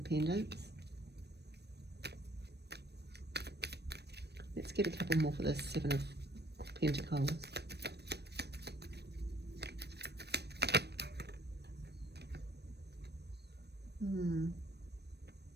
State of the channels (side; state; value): left; late; 0.48 ms